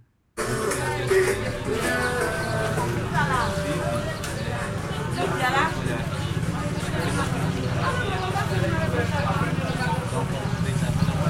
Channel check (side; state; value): both; identical; correlation 1.00